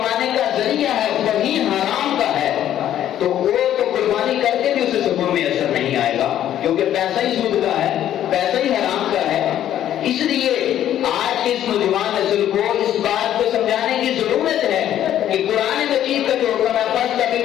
کا ذریعہ ہے وہی حرام کا ہے تو وہ تو قربانی کر کے بھی اسے سکون میں اثر نہیں آئے گا، کیونکہ پیسہ ہی سود کا ہے، پیسہ ہی حرام کا ہے۔ اس لیے آج کے اس نوجوان نسل کو اس بات کو سمجھانے کی ضرورت ہے کہ قرآن مجید کا جو حکم ہے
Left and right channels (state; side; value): quieter; right; 11.4 dB